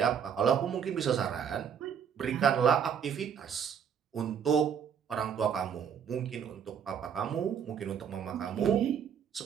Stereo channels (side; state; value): left; quieter; 7.8 dB